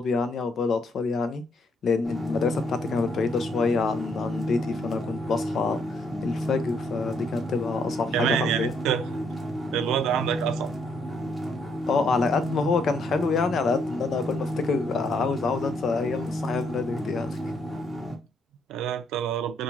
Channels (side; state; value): both; normal; correlation 0.71